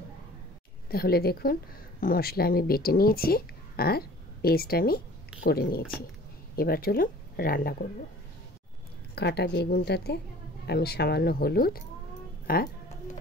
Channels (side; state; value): both; normal; correlation 0.48